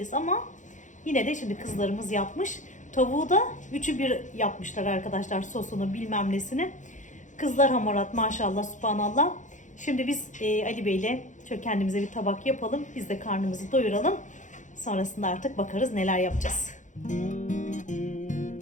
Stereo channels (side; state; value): right; late; 0.36 ms